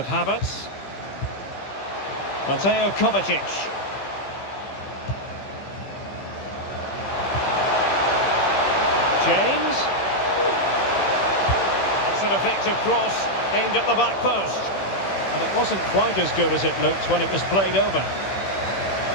Havertz. Mateo Kovacic. James. That's an effective cross aimed at the back post. And it wasn't quite as good as it looked when it was played over.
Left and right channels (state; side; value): late; right; 15 ms